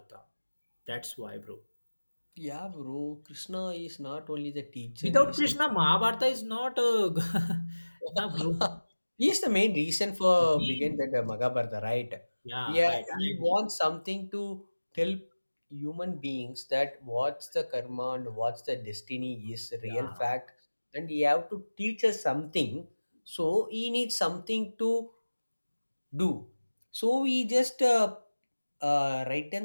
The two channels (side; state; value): both; inverted; correlation -1.00